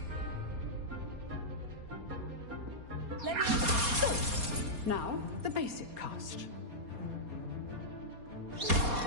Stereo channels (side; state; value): left; late; 4.2 ms